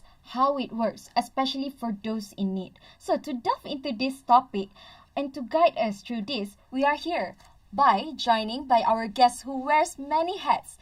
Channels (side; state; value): both; identical; correlation 1.00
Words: how it works, especially for those in need. So to delve into this topic and to guide us through this, we are here joining by our guest who wears many hats.